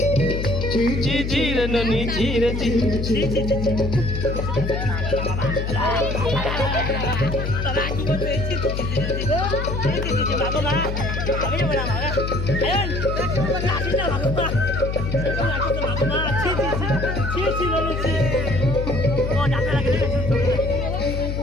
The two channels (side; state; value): left; noise; hum, 3 dB below the sound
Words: জি জি রে ননি জি রে জি